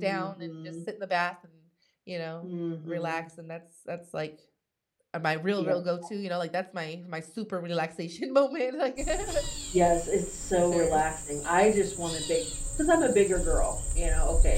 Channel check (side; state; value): both; identical; correlation 1.00